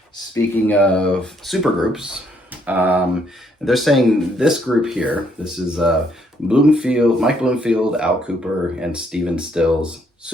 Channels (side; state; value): both; normal; correlation 0.70